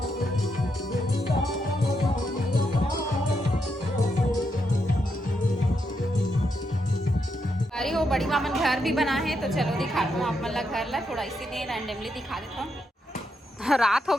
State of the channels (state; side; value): normal; both; correlation 0.81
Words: वो बड़ी मामन घर भी बना है तो चलो दिखाता हूँ आप मतलब घर ला थोड़ा इसीलिए रैंडमली दिखा देता हूँ। रात हो